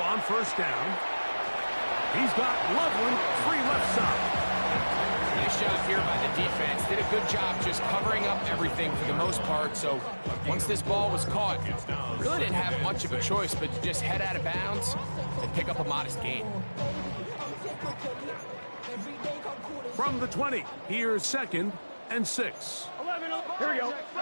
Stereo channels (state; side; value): inverted; both; correlation -1.00